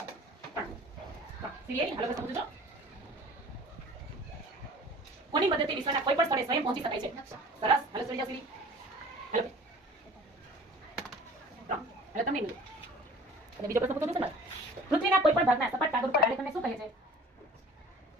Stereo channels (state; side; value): normal; both; correlation 0.45